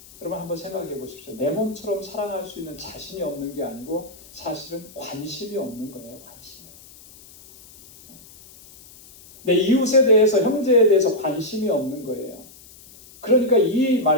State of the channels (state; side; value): noise; left; hiss, 22 dB below the sound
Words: 여러분 한번 생각해 보십시오. 내 몸처럼 사랑할 수 있는 자신이 없는 게 아니고 사실은 관심이 없는 거예요. 관심이. 내 이웃에 대해서, 형제에 대해서 관심이 없는 거예요. 그러니까 이